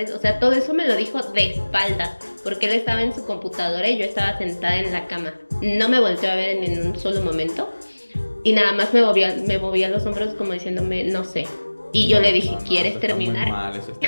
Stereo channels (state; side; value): inverted; both; correlation -1.00